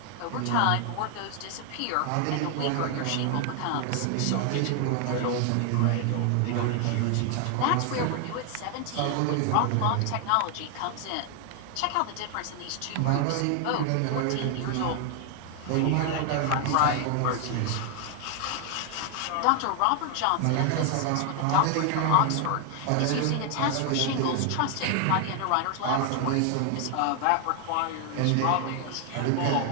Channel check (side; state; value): both; different; correlation 0.00